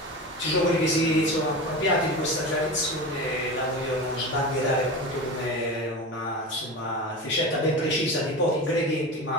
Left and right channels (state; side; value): normal; both; correlation 0.27